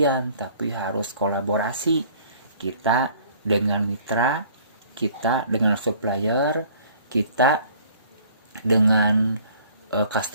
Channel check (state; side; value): inverted; both; correlation -0.54